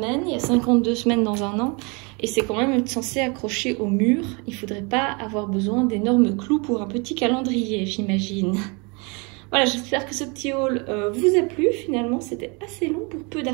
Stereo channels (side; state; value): left; quieter; 30.8 dB